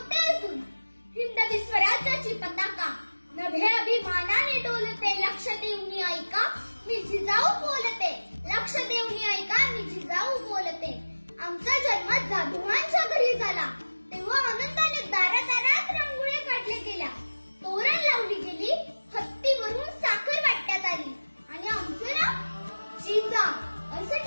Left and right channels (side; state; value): both; inverted; correlation -1.00